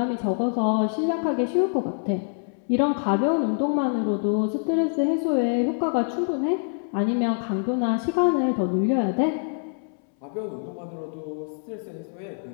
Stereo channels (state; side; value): silent; right; 62 dB below the other